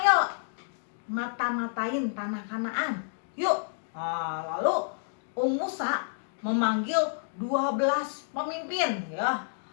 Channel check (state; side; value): silent; right; digital silence